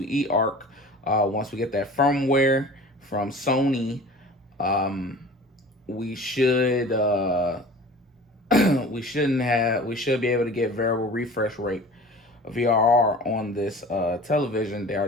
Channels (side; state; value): both; normal; correlation 0.41